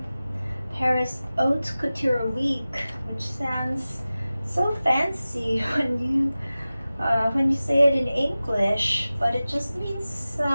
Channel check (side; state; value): both; inverted; correlation -0.96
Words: Paris Haute Couture week, which sounds so fancy when you say it in English, but it just means